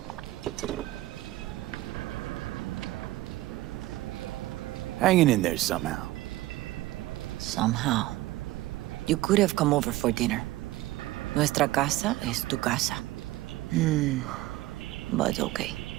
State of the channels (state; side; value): quieter; left; 17.2 dB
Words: Hanging in there somehow. Somehow. You could have come over for dinner. Nuestra casa es tu casa. But okay.